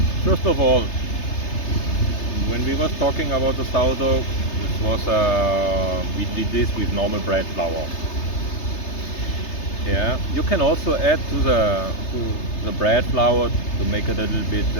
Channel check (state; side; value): late; right; 3.3 ms